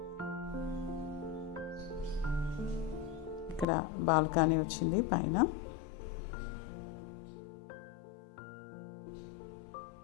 ఇక్కడ బాల్కనీ వచ్చింది పైన.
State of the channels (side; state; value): right; drops out; at 3.7 s